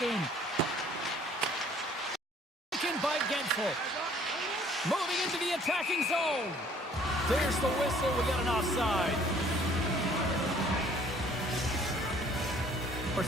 game. Taken by Gensel. Moving into the attacking zone. There's the whistle. We got an offside.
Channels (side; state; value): both; normal; correlation 0.57